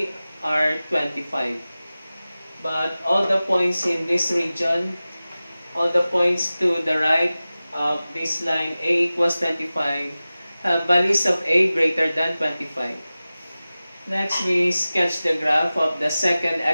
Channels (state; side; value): inverted; both; correlation -0.96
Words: are 25. But all the points in this region, all the points to the right of this line A equals 25, have values of A greater than 25. Next, we sketch the graph of the second